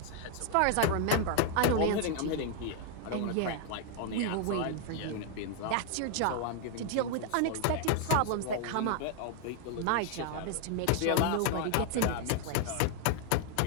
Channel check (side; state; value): both; different; correlation 0.00